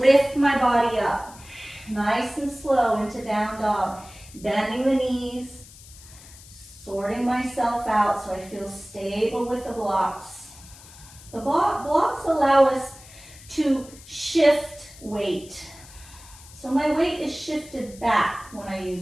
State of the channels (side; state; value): left; noise; hiss, 20 dB below the sound